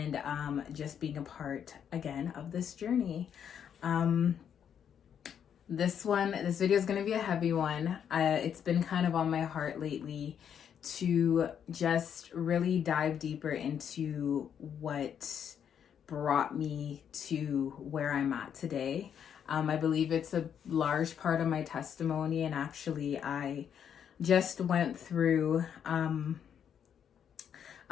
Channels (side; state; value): right; quieter; 8.4 dB